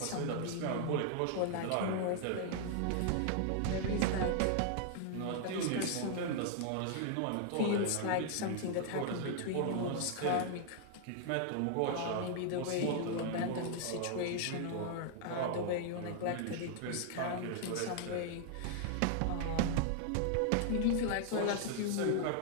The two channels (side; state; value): both; different; correlation 0.00